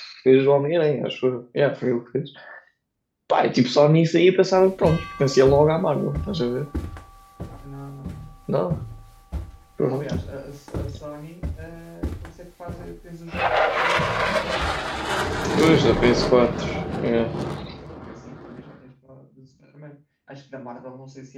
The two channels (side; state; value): both; identical; correlation 1.00